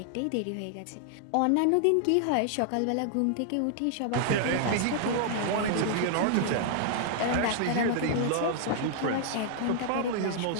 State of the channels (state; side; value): different; both; correlation -0.01